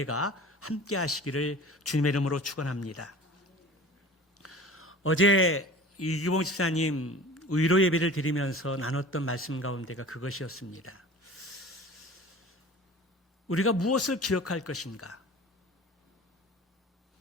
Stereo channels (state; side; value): normal; both; correlation 0.41